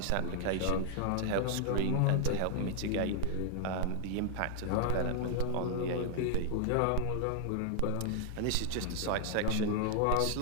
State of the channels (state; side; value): different; both; correlation 0.00